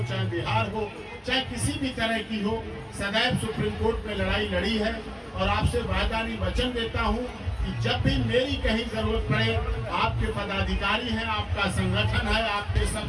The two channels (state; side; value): identical; both; correlation 1.00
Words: चाहे बिहार हो, चाहे किसी भी तरह की हो, सदैव सुप्रीम कोर्ट में लड़ाई लड़ी है। और आपसे वायदानी वचन देता हूं कि जब भी मेरी कहीं जरूरत पड़े, आपके पदाधिकारी हैं, आपका संगठन है, आपके